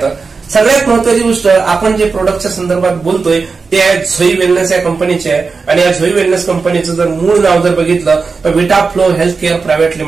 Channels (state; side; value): quieter; left; 4.6 dB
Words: तर सगळ्यात महत्वाची गोष्ट, आपण जे प्रोडक्टच्या संदर्भात बोलतोय ते आहे झोई वेलनेस या कंपनीचे आहे. आणि या झोई वेलनेस कंपनीचं जर मूळ नाव जर बघितलं तर विटाफ्लो हेल्थ केअर प्रायव्हेट